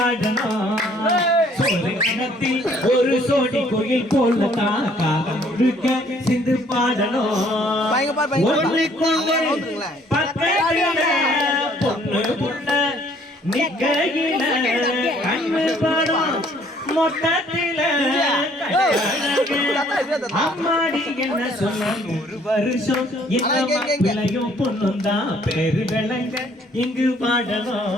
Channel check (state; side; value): normal; both; correlation 0.61